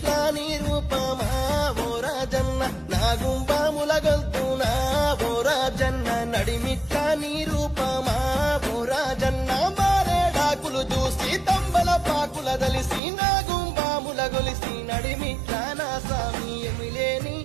నీ రూపమా ఓ రాజన్న నాగుంబాముల గొల్తునా ఓ రాజన్న నడిమిట్లా నీ రూపమా ఓ రాజన్న మారేడాకులు చూసి తంబల పాకుల దలిసి నాగుంబాముల గొలిసి నడిమిట్లా నా సామి ఎమిలేని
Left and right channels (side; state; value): left; drops out; at 13.0 s